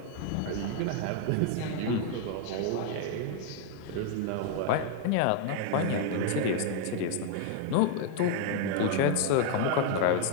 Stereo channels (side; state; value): both; different; correlation 0.00